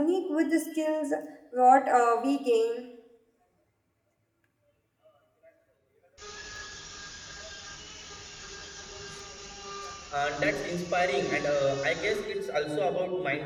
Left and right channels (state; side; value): identical; both; correlation 1.00